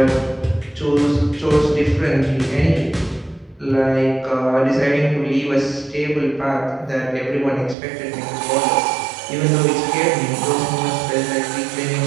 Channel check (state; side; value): drops out; left; at 7.8 s